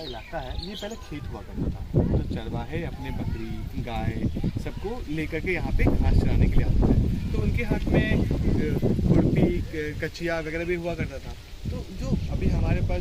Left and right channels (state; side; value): identical; both; correlation 1.00